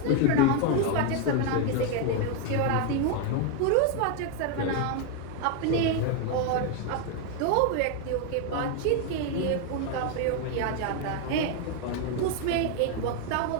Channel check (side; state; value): both; different; correlation 0.01